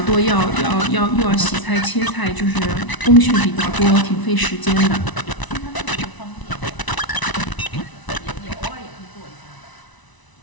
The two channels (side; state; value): right; late; 1.0 ms